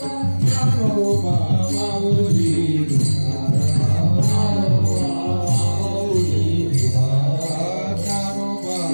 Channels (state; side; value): inverted; both; correlation -1.00